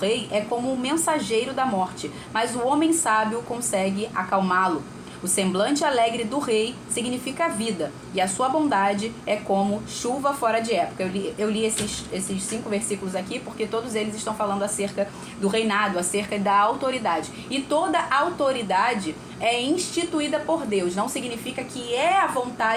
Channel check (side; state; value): both; identical; correlation 1.00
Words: é como um mensageiro da morte, mas o homem sábio consegue acalmá-lo. O semblante alegre do rei significa vida, e a sua bondade é como chuva fora de época. Eu li esses 5 versículos aqui porque todos eles estão falando acerca do reinado, acerca da autoridade. E toda autoridade é instituída por Deus. Não significa que é a